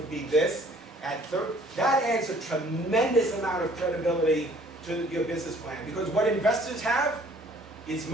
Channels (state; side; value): normal; both; correlation 0.56